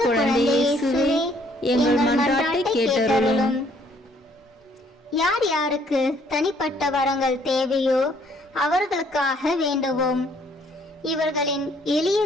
குழந்தை இயேசுவே, எங்கள் மன்றாட்டை கேட்டருளும். யார் யாருக்கு தனிப்பட்ட வரங்கள் தேவையோ அவர்களுக்காக வேண்டுவோம். இவர்களின் எளிய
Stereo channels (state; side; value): normal; both; correlation 0.64